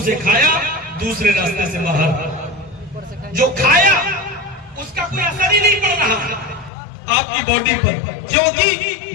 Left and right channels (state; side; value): drops out; right; at 6.7 s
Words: سے کھایا دوسرے راستے سے باہر. جو کھایا اس کا کوئی اثر ہی نہیں پڑ رہا آپ کی باڈی پر، کیونکہ